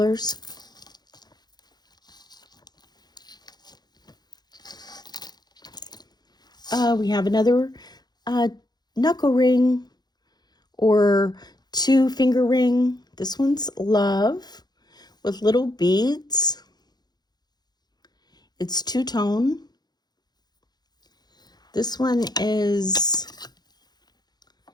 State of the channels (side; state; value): right; late; 0.20 ms